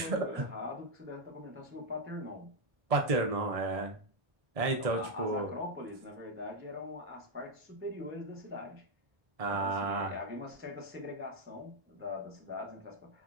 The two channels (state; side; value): late; left; 1.6 ms